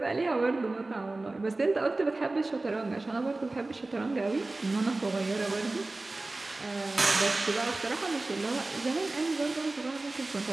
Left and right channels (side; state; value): left; quieter; 3.1 dB